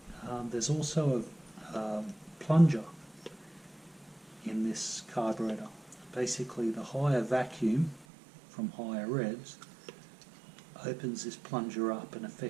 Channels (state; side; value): drops out; left; at 8.1 s